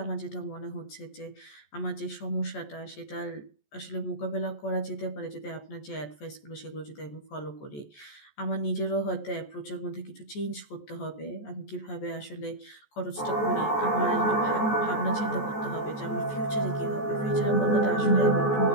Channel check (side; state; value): right; late; 14 ms